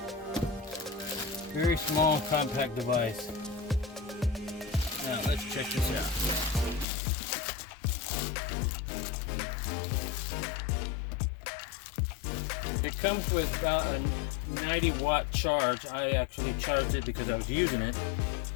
Very small, compact device. Now let's check this out. It comes with about a 90 watt charge. I actually charged it because I was using it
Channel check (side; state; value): right; drops out; at 6.9 s